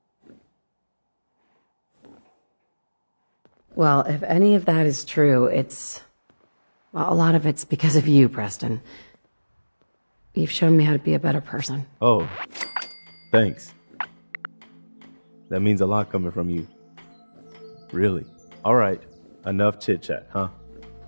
Well, if any of that is true, well, a lot of it's because of you, Preston. You've shown me how to be a better person. Oh, thanks. That means a lot coming from you. Really. All right, enough chit-chat, huh?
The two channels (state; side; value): inverted; both; correlation -1.00